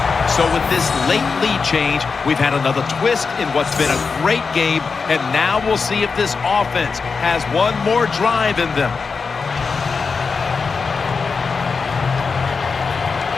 So with this late lead change, we've had another twist in what's been a great game, and now we'll see if this offense has one more drive in them.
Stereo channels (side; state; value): right; quieter; 4.9 dB